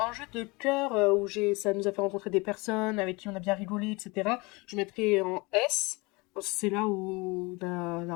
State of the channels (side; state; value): right; quieter; 25.9 dB